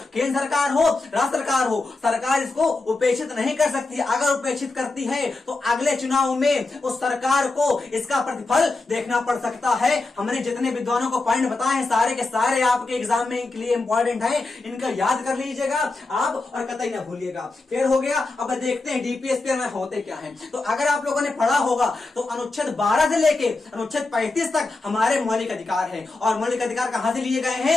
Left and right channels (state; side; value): quieter; right; 3.4 dB